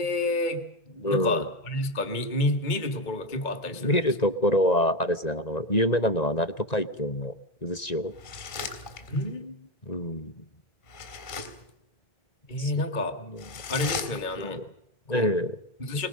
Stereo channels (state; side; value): late; right; 1.9 ms